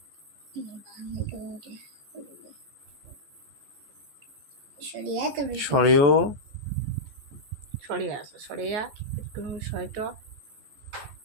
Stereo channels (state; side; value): late; left; 14 ms